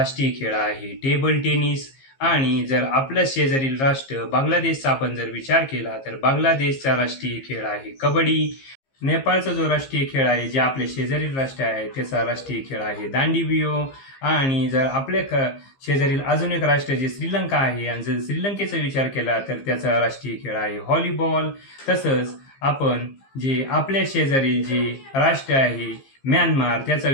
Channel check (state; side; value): late; right; 15 ms